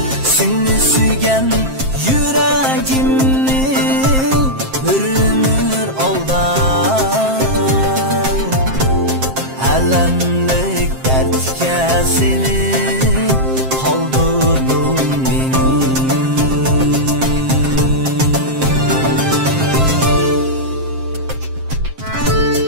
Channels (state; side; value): late; left; 7.6 ms